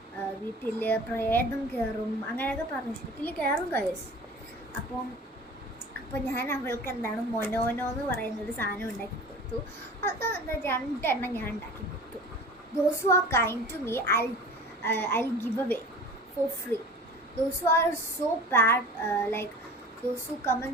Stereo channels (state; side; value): normal; both; correlation 0.39